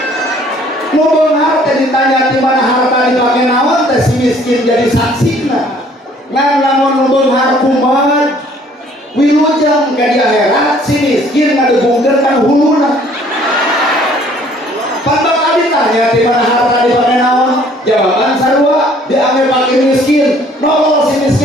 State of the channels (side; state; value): both; normal; correlation 0.58